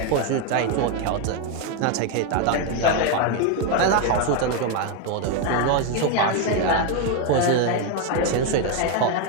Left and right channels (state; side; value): different; both; correlation 0.01